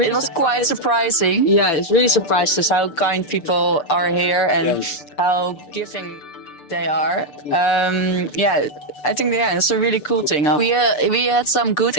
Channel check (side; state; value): right; late; 6.8 ms